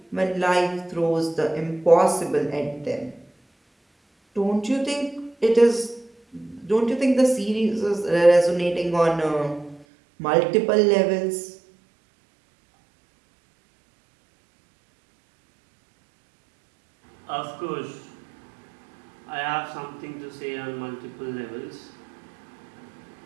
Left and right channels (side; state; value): left; drops out; at 9.9 s